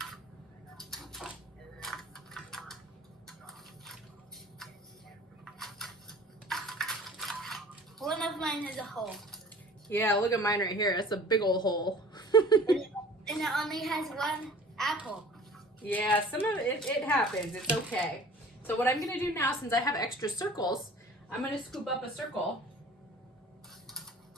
One of mine has a hole. Yeah, look at mine right here. That's a big old hole. And it only has one apple. Yeah, some of it happens. It's okay. So what I'm going to do now, since I have extra circles, I'm going to scoop up a circle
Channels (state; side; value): normal; both; correlation 0.46